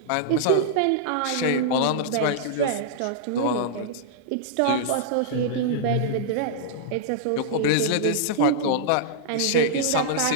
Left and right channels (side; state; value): both; different; correlation -0.02